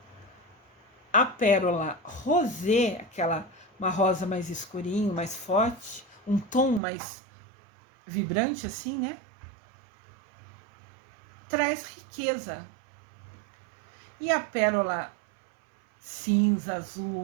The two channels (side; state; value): left; drops out; at 6.8 s